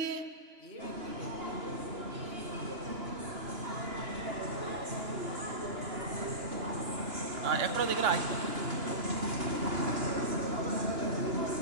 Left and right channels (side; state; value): left; late; 2.9 ms